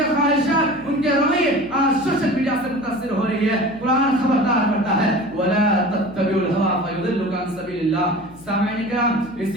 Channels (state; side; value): noise; left; hum, 22 dB below the sound